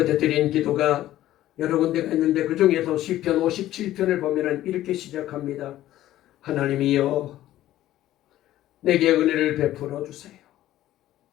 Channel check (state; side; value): quieter; right; 14.0 dB